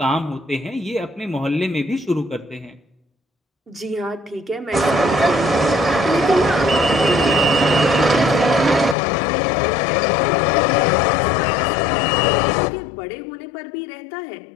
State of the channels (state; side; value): drops out; right; at 9.0 s